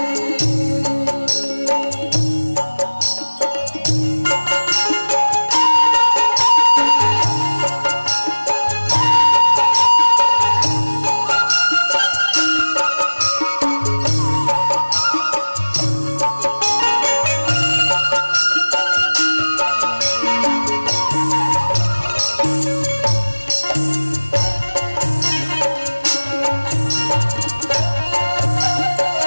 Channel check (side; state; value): both; inverted; correlation -1.00